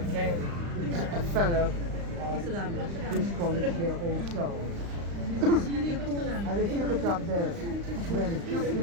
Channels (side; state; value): left; late; 35 ms